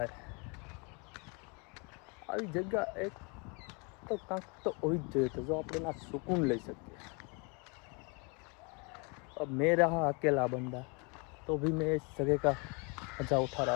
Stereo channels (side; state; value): right; quieter; 32.4 dB